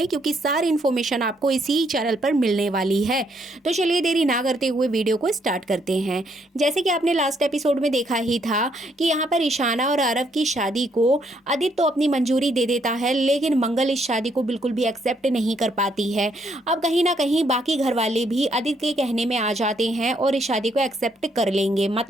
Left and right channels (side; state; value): both; normal; correlation 0.72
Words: क्योंकि सारी इन्फॉर्मेशन आपको इसी चैनल पर मिलने वाली है। तो चलिए देरी ना करते हुए वीडियो को स्टार्ट करते हैं। जैसे कि आपने लास्ट एपिसोड में देखा ही था कि यहाँ पर ईशाना और आरव की शादी को आदित्य तो अपनी मंजूरी दे देता है, लेकिन मंगल इस शादी को बिल्कुल भी एक्सेप्ट नहीं कर पाती है। अब कहीं ना कहीं बाकी घर वाले भी आदित्य के कहने में आ जाते हैं और इस शादी को एक्सेप्ट कर लेंगे।